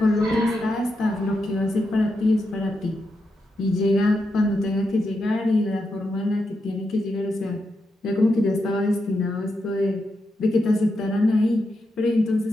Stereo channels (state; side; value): normal; both; correlation 0.85